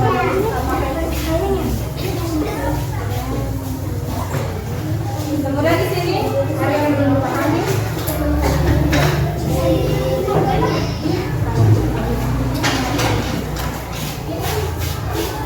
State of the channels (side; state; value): both; identical; correlation 1.00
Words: Kemudian di sini ada yang belum pahami.